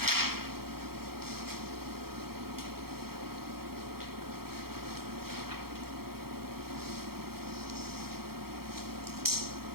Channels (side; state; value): left; late; 0.94 ms